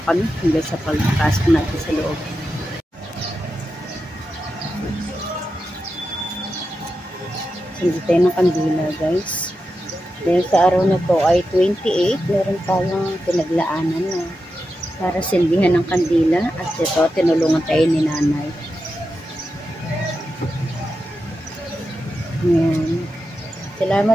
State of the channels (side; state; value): both; normal; correlation 0.89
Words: kami hanggang sa pagpasok natin sa loob. Hindi tayo ng kandila guys. Dahil sa araw na to ay 28, meron tayong pinaglaanan na para silbihan ng kandila. At ito, tinulungan tayo ni nanay. Ayan.